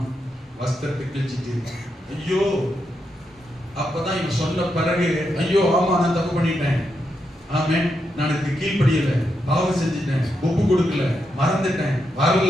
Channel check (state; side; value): normal; both; correlation 0.83